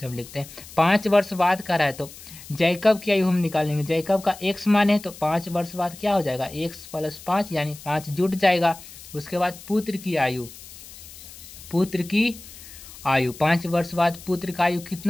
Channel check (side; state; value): left; noise; hiss, 17 dB below the sound